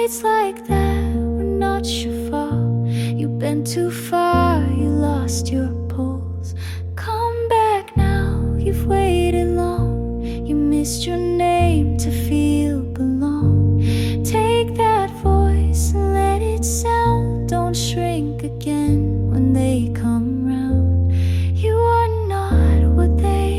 like that were not your fault. You bent too far, you lost your pulse. Come back now, you've waited long. You missed your name to feel belong. Take that voice and let it sound. Don't shrink again when they come round. You are not what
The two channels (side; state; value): both; identical; correlation 1.00